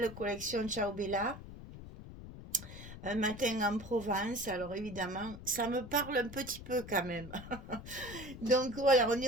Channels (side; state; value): left; noise; rumble, 13 dB below the sound